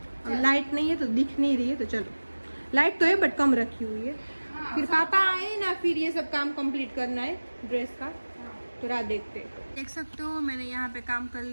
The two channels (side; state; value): both; inverted; correlation -1.00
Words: अब लाइट नहीं है तो दिख नहीं रही है, तो चलो लाइट तो है बट कम रखी हुई है। हाँ, फिर पापा आए ना, फिर ये सब काम कंप्लीट करना है ड्रेस का, तो रात देखते हैं। देख सकते हो मैंने यहाँ पे काम कर